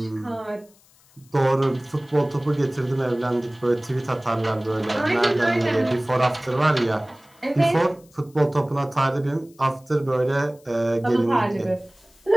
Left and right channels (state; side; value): noise; left; hiss, 30 dB below the sound